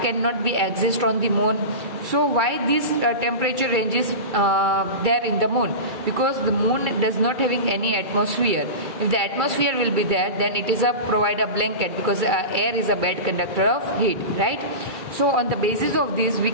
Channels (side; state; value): left; late; 2.3 ms